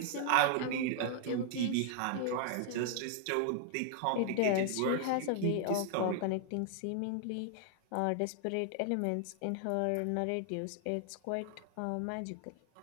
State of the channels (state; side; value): different; both; correlation 0.00